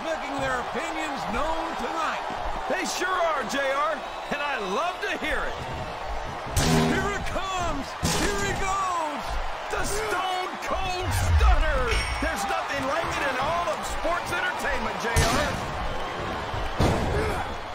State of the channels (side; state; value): both; identical; correlation 1.00